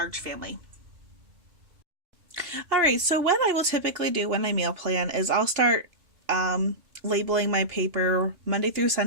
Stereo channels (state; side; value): late; left; 2.8 ms